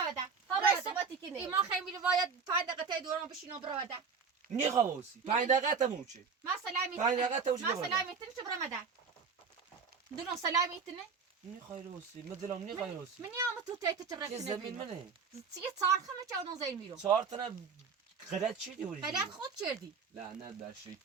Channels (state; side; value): quieter; left; 5.5 dB